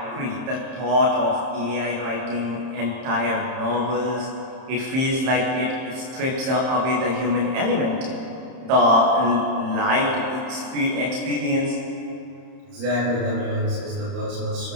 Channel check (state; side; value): late; left; 31 ms